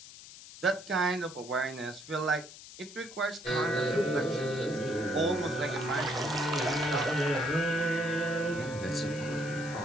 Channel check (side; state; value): left; noise; hiss, 16 dB below the sound